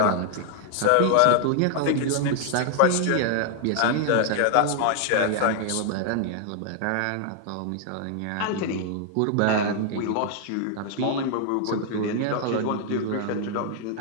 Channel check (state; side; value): different; both; correlation 0.00